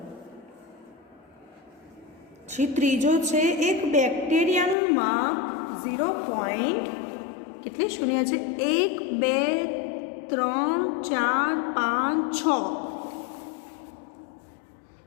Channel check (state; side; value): drops out; right; at 4.8 s